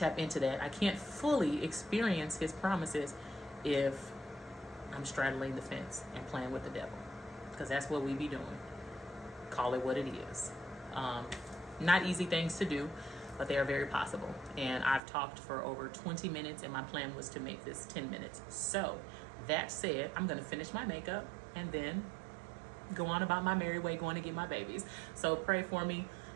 into that. I can't fully experience his promises if I'm straddling the fence and playing with the devil, because that's what we be doing. Call it what it is. Not easy things to do, but they are very possible. And I've talked for over 20 minutes, and my plan was to make this 10 minutes. So that said, I'm gonna finish my makeup and then go on about my merry way, going to get my babies. So pray for me,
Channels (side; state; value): left; drops out; at 15.0 s